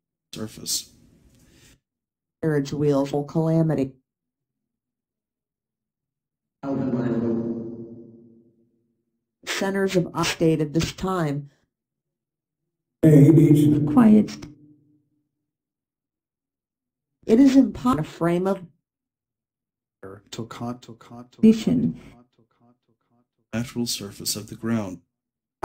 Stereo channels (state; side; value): identical; both; correlation 1.00